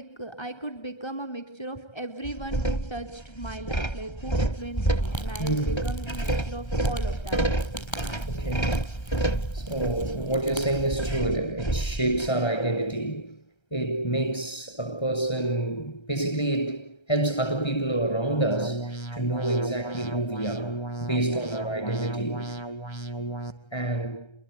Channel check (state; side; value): late; right; 1.3 ms